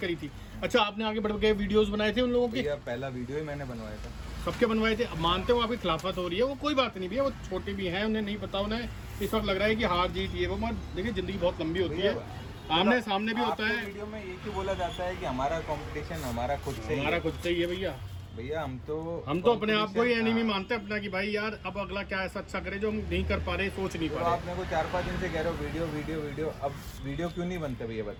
थी? अच्छा, आपने आगे बढ़ के वीडियोस बनाए थे उन लोगों के? पहला वीडियो ही मैंने बनवाया था, सबके बनवाए थे। अब मानते हो आपकी खिलाफत हो रही है, वो कोई बात नहीं भैया, वो छोटे भी हैं, उन्हें नहीं पता, उन्हें इस वक्त लग रहा है कि हार जीत ये वो, मगर देखिए जिंदगी बहुत लंबी होती है, आमने सामने भी होता है। वीडियो में ये क्यों बोला जाता है कि हमारा कंपटीशन हमारा खुद से ही है भैया। भैया हम तो अपने आप को ही एनिमी मानते हैं अपना, कि भाई यार अब अगला क्या ऐसा अच्छा करे जो हम नहीं कर पा रहे, सोच नहीं पा रहे। आप मेरे को 4-5 दिन से कह रहे हो वीडियो वीडियो वीडियो, अब वीडियो क्यों नहीं बनते भैया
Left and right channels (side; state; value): both; identical; correlation 1.00